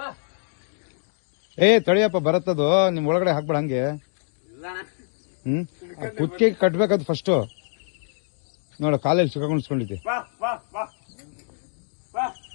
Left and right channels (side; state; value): right; silent; digital silence